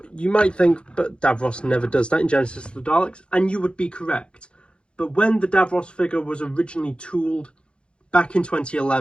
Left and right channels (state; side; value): late; right; 0.056 ms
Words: you might think, but Davros never does that in Genesis of the Daleks, and you would be correct. But when the Davros figure was originally tooled back in